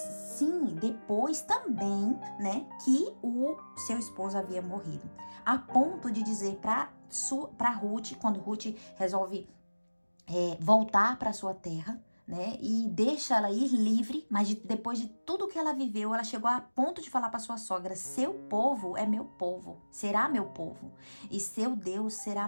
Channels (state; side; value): inverted; both; correlation -1.00